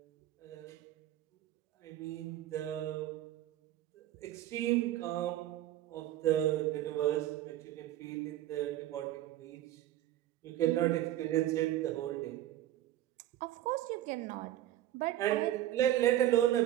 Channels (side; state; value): left; quieter; 13.3 dB